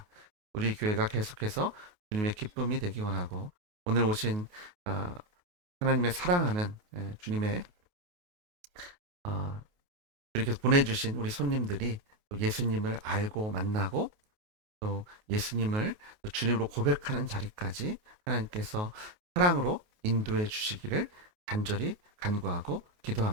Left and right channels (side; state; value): left; late; 28 ms